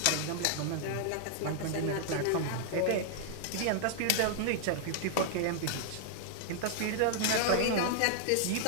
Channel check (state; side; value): different; both; correlation 0.00